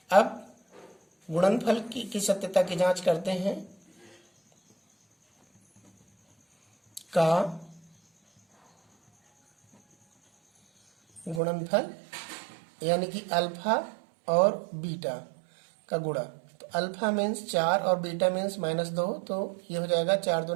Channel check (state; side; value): drops out; left; at 11.4 s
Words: अब गुणनफल की सत्यता की जांच करते हैं। का गुणनफल यानी कि अल्फा और बीटा का गुणा। तो अल्फा मीन्स 4 और बीटा मीन्स माइनस 2, तो ये हो जाएगा 4